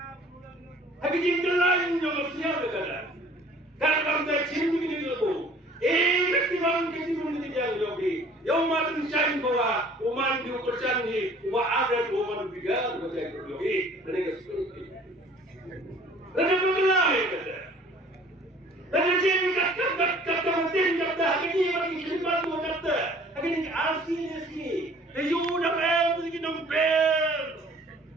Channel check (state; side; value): normal; both; correlation 0.52